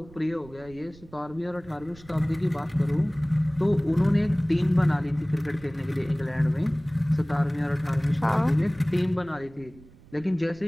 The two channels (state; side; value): noise; right; rumble, 22 dB below the sound